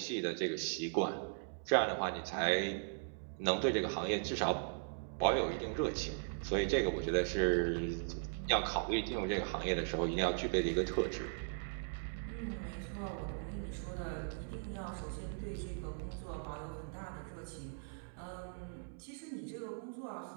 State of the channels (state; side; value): silent; left; digital silence